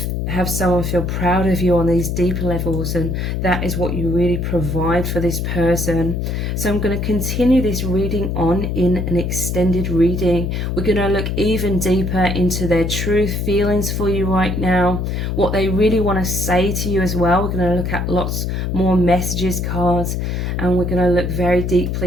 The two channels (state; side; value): noise; left; hum, 1 dB below the sound